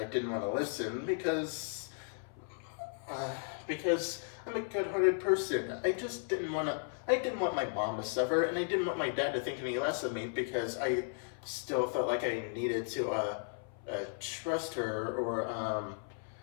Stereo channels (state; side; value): silent; right; 54 dB below the other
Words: didn't want to listen because I'm a good-hearted person. I didn't want my mom to suffer, and I didn't want my dad to think any less of me because I still felt like I needed to trust her or